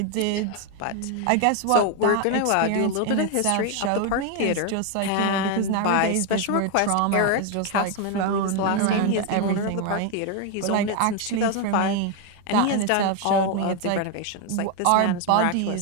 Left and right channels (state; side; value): different; both; correlation 0.01